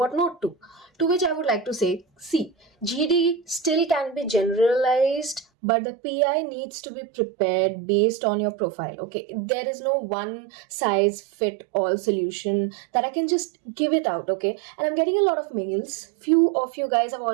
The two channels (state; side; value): drops out; left; at 5.5 s